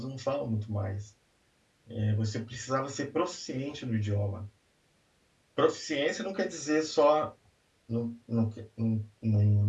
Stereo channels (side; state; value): both; identical; correlation 1.00